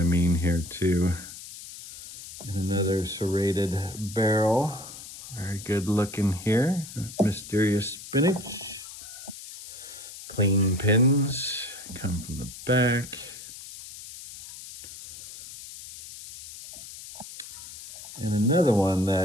mean here too. And another serrated barrel. Very good looking here. Mysterious Spinach. Clean pins come from the back. And another one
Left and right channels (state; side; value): noise; left; hiss, 13 dB below the sound